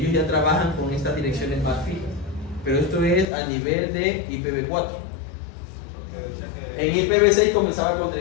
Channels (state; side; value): drops out; right; at 3.2 s